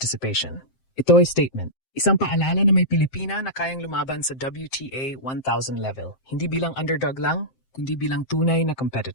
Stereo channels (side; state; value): right; late; 7.6 ms